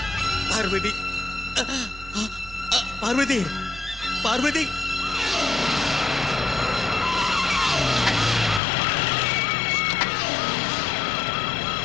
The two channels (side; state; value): right; drops out; at 8.6 s